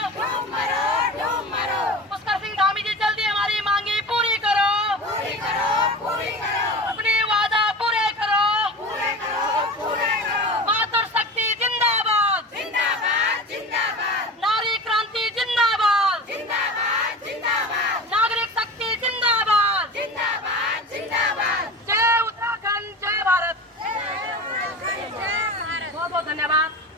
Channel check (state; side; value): normal; both; correlation 0.32